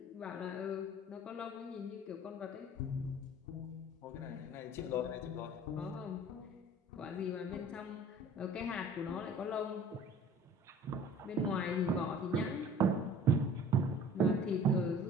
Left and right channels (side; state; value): both; normal; correlation 0.47